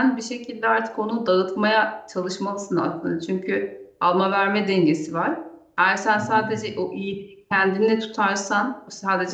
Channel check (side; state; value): both; identical; correlation 1.00